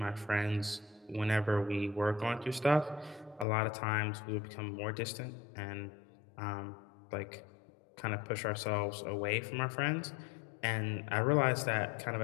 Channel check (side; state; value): right; drops out; at 3.5 s